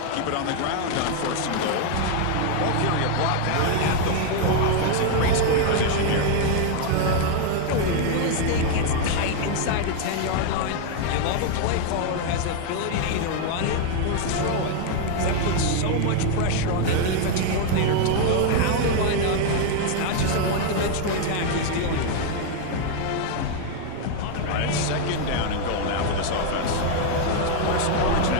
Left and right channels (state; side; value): different; both; correlation 0.00